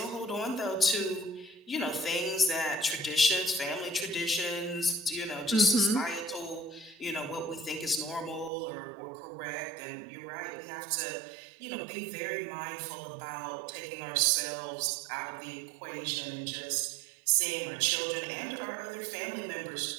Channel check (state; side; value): drops out; left; at 8.5 s